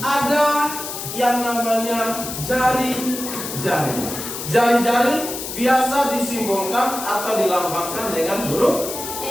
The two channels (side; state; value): left; noise; hiss, 7 dB below the sound